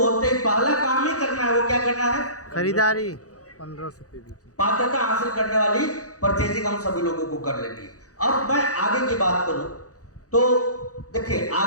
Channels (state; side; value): late; right; 0.67 ms